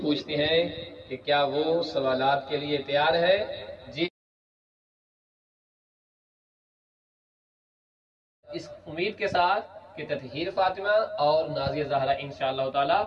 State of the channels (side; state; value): both; identical; correlation 1.00